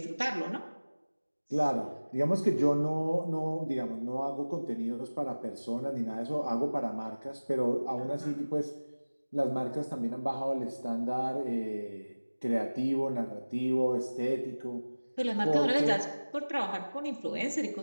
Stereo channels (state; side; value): inverted; both; correlation -1.00